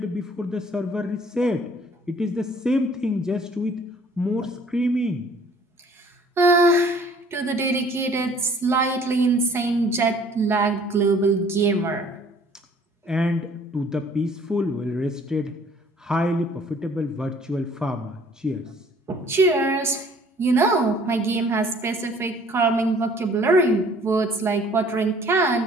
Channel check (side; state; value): both; normal; correlation 0.55